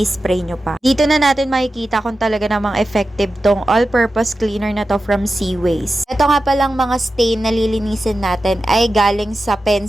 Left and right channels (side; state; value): both; normal; correlation 0.93